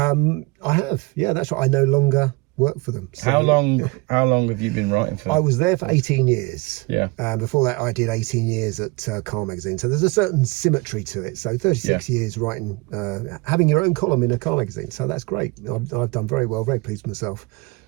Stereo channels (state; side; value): quieter; left; 26.4 dB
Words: have. Yeah, that's right. I no longer work for them. So, how long have you been writing for? I was there for 18 years. Yeah. Before that, I did 18 years at Car Magazine. So there's a certain symmetry to it. So 36 years writing, having your own column in a car magazine. So that's great. I've done very well. Very pleased with myself.